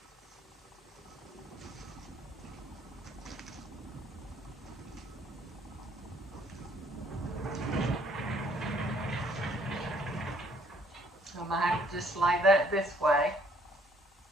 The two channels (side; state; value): both; normal; correlation 0.63